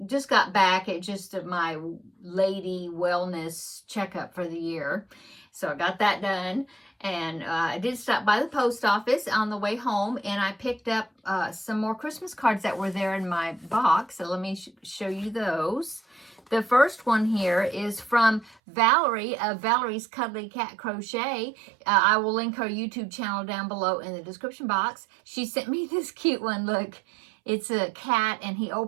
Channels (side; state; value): left; drops out; at 18.6 s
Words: just got back at just my lady wellness checkup for the year. So I got that done. And I did stop by the post office on the way home, and I picked up some more Christmas cards that were there in my box. So let me show you those. The first one here is from Valerie of Valerie's Cuddly Cat Crochet. I will link her YouTube channel down below in the description box. She sent me this cute one. Look, it's a cat and he